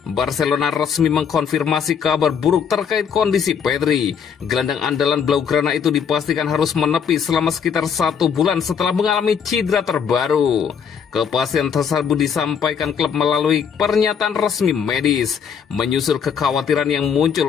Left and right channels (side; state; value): right; quieter; 7.1 dB